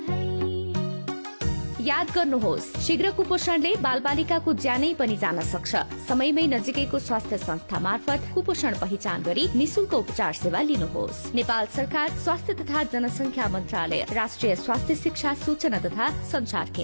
है। याद गर्नुहोस्, शीघ्र कुपोषणले बालबालिकाको ज्यानै पनि जान सक्छ। समयमै नजिकैको स्वास्थ्य संस्था मार्फत कुपोषण पहिचान गरी निशुल्क उपचार सेवा लिनुहोस्। नेपाल सरकार स्वास्थ्य तथा जनसंख्या मन्त्रालय, राष्ट्रिय स्वास्थ्य शिक्षा सूचना तथा संचार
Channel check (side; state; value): both; inverted; correlation -1.00